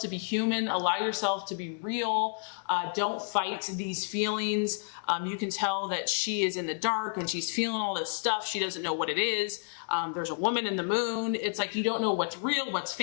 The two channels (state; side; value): silent; right; digital silence